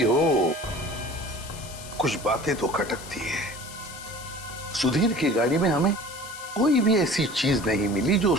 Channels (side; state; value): left; noise; hiss, 15 dB below the sound